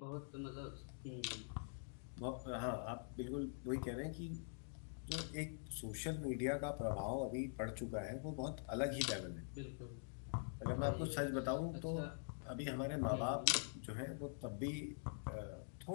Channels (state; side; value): silent; right; digital silence